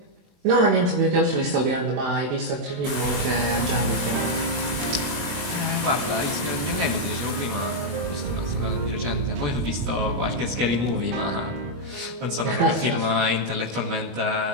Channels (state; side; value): late; left; 21 ms